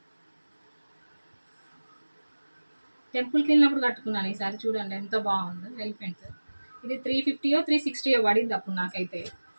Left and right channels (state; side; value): inverted; both; correlation -1.00